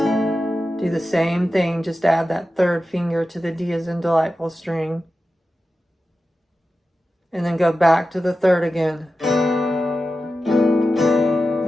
Do the same thing, just add that 3rd finger to the D as in delightful string. And then go back to the 3rd again.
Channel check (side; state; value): both; normal; correlation 0.92